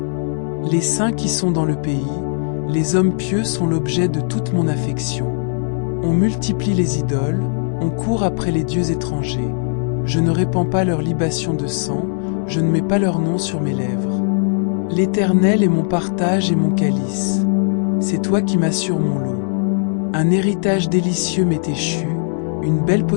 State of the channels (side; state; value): right; silent; digital silence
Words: Les saints qui sont dans le pays, les hommes pieux sont l'objet de toute mon affection. On multiplie les idoles, on court après les dieux étrangers. Je ne répands pas leur libation de sang, je ne mets pas leur nom sur mes lèvres. L'Éternel est mon partage et mon calice. C'est toi qui m'assures mon lot. Un héritage délicieux m'est échu, une belle